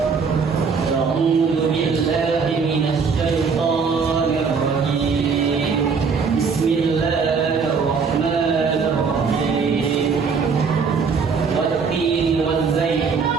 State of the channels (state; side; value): quieter; left; 5.4 dB